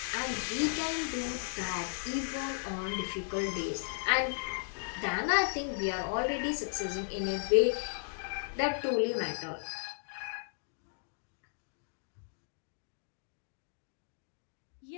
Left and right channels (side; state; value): right; silent; digital silence